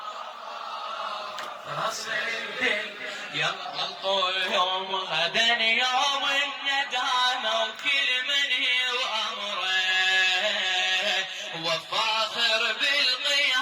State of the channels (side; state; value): both; identical; correlation 1.00